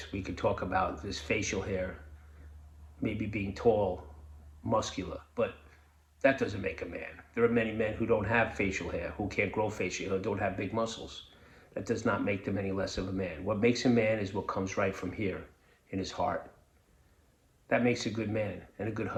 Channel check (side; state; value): both; identical; correlation 1.00